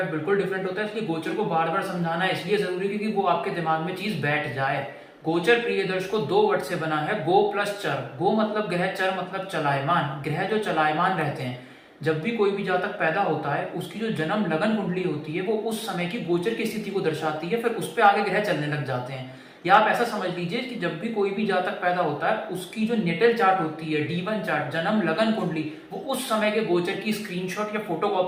बिल्कुल डिफरेंट होता है। इसलिए गोचर को बार बार समझाना इसलिए जरूरी है क्योंकि वो आपके दिमाग में चीज बैठ जाए। गोचर प्रिय दर्शकों 2 वर्ड से बना है, गो प्लस चर। गो मतलब ग्रह, चर मतलब चलायमान। ग्रह जो चलायमान रहते हैं, जब भी कोई भी जातक पैदा होता है उसकी जो जन्म लगन कुंडली होती है वो उस समय की गोचर की स्थिति को दर्शाती है, फिर उस पर आगे ग्रह चलने लग जाते हैं। या आप ऐसा समझ लीजिए कि जब भी कोई भी जातक पैदा होता है उसकी जो नेटल चार्ट होती है, D1 चार्ट, जन्म लगन कुंडली, वो उस समय के गोचर की स्क्रीनशॉट या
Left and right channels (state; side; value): identical; both; correlation 1.00